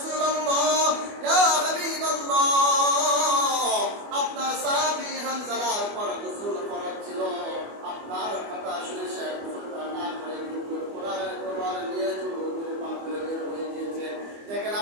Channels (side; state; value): left; late; 24 ms